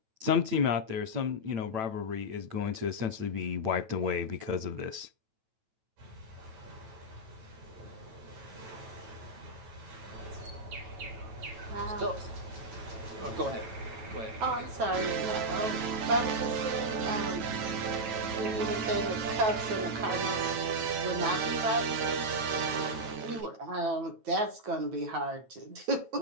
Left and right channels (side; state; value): left; late; 9.1 ms